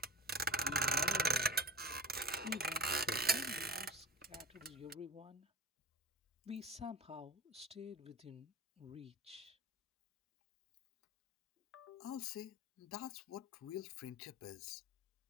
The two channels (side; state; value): both; normal; correlation 0.34